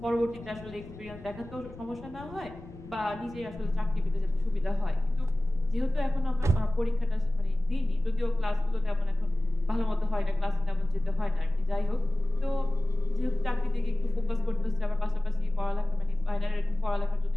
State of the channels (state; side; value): noise; left; rumble, 18 dB below the sound